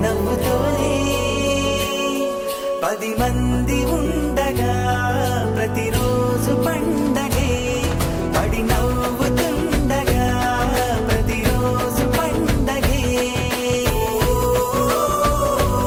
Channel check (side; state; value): both; identical; correlation 1.00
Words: నవ్వుతోనే 10 మంది ఉండగా ప్రతిరోజు పండగే పడి నవ్వుతుండగా ప్రతిరోజు పండగే